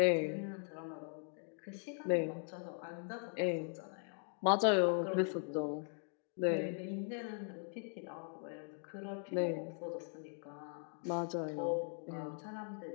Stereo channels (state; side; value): silent; right; 51 dB below the other